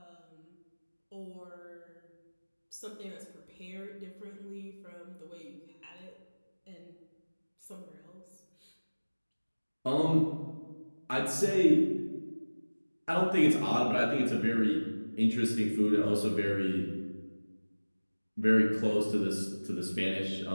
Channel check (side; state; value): both; inverted; correlation -1.00